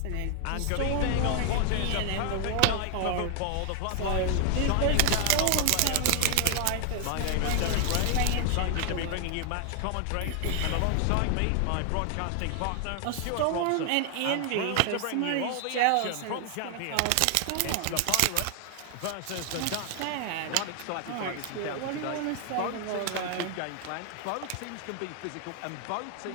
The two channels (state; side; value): different; both; correlation 0.00